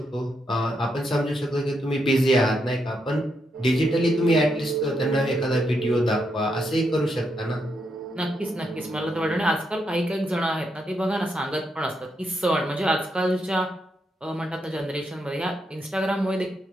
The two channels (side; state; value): both; normal; correlation 0.81